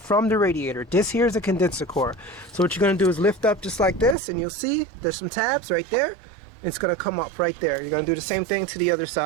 the radiator. This here is a condenser core. So what you're going to do is lift up just like this, and you'll see there's some tabs right there. It's going to come up right there. You're going to do the same thing to the other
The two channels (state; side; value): drops out; left; at 4.2 s